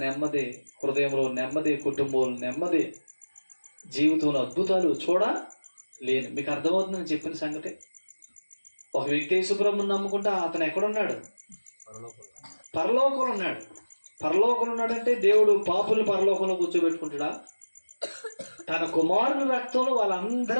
నెమ్మది, హృదయంలో నెమ్మది, కుటుంబంలో నెమ్మది, జీవితంలో అద్భుతాలు చూడలేను. మీకు అర్థమవుతుందని చెప్పిన సంగతి. ఒక వ్యక్తి యేసుప్రభువుని నమ్ముకుంటే అతను ఎక్కడున్నాడు? పరలోకంలో ఉన్నాడు. పరలోకంలో ఉన్నాడంటే దేవుడు పాపుల్ని పరలోకంలో కూర్చోబెట్టుకుంటాడా? తన కుమారుని రక్తంలో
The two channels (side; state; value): both; inverted; correlation -1.00